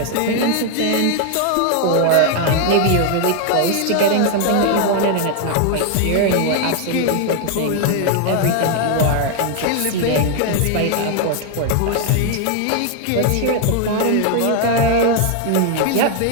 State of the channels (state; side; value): different; both; correlation 0.00